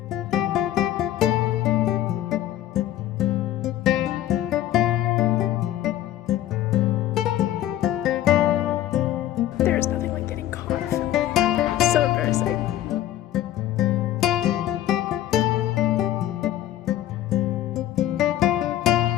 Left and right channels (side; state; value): right; quieter; 13.0 dB